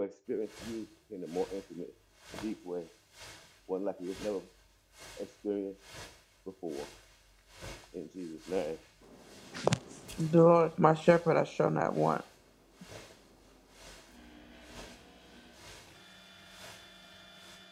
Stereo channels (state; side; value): identical; both; correlation 1.00